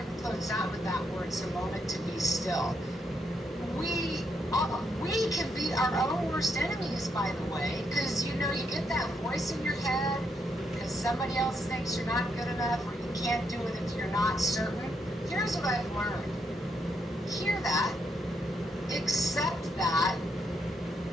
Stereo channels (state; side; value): normal; both; correlation 0.77